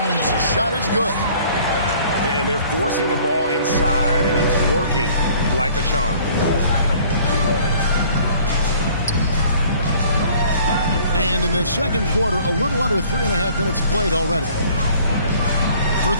shot is good. And they're forcing the ball inside, and it's working like a charm. And in the second quarter, a little under 3.5 minutes played already. For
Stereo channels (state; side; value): inverted; both; correlation -0.54